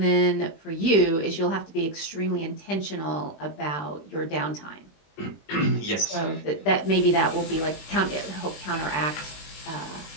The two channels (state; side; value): late; right; 20 ms